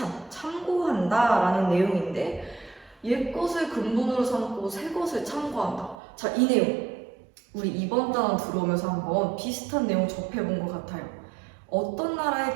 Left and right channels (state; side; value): drops out; left; at 6.0 s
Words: 참고한다 라는 내용인데, 옛것을 근본으로 삼고 새 것을 참고한다. 자, 이 내용 우리 이번 단원 들어오면서 한번 비슷한 내용 접해본 것 같아요. 어떤 나라의